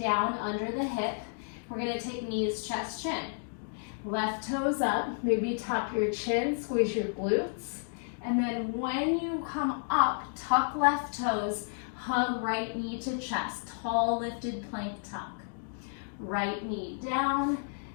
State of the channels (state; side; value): silent; right; digital silence